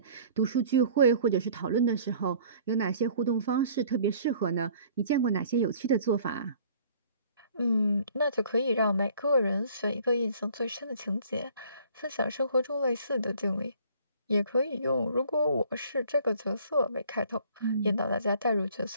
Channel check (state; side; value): inverted; both; correlation -0.54